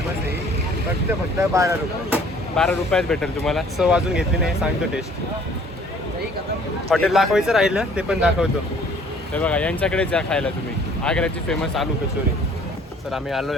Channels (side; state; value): both; normal; correlation 0.56